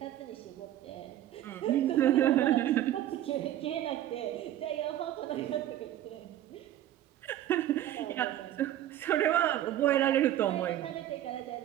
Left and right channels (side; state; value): left; quieter; 12.6 dB